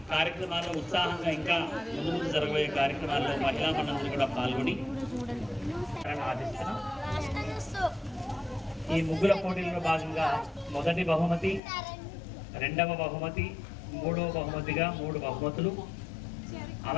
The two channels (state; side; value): drops out; right; at 11.6 s